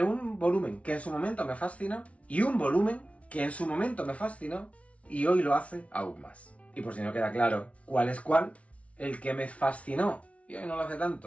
un volumen que en su momento me fascinó y un volumen que en su momento me fascinó y hoy lo hace aún más. Y por si no queda claro cuál es cuál, el que me fascinó y hoy no lo hace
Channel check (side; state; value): right; late; 0.064 ms